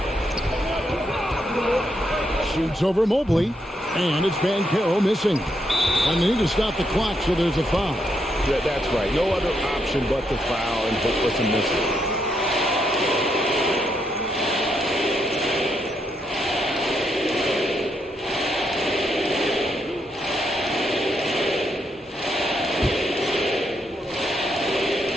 Shoots over Mobley, and it's Banchero missing. And they need to stop the clock, so there's a foul. Yeah, that's right. No other option but to foul and hope for some missing.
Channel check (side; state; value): both; normal; correlation 0.79